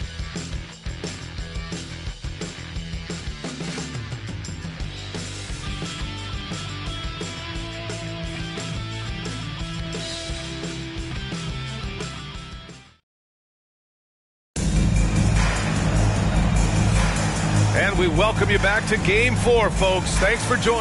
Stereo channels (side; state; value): both; identical; correlation 1.00